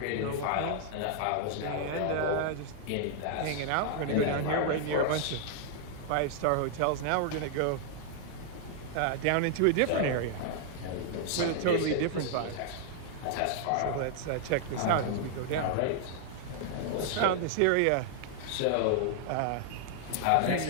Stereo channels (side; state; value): both; different; correlation -0.01